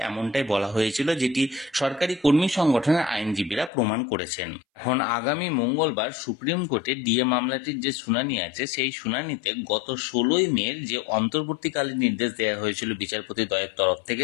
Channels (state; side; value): drops out; right; at 3.7 s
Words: এমনটাই বলা হয়েছিল, যেটি সরকারি কর্মী সংগঠনের আইনজীবীরা প্রমাণ করেছেন। এখন আগামী মঙ্গলবার সুপ্রিম কোর্টে ডিএ মামলাটির যে শুনানি আছে, সেই শুনানিতে গত 16ই মে যে অন্তর্বর্তীকালীন নির্দেশ দেওয়া হয়েছিল বিচারপতি দ্বয়ের তরফ